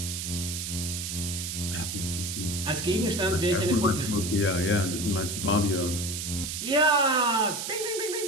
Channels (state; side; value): noise; right; hiss, 4 dB below the sound